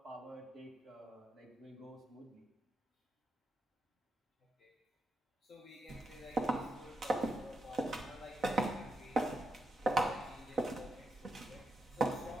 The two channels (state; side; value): normal; both; correlation 0.84